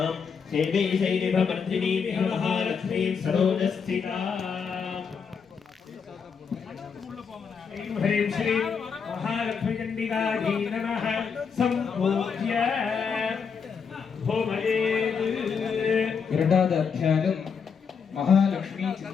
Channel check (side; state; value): right; quieter; 6.2 dB